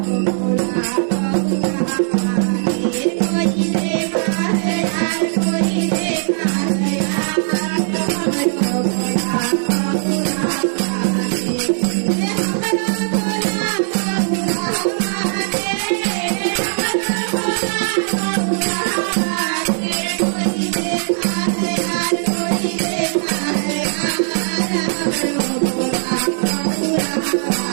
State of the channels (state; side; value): silent; left; 67 dB below the other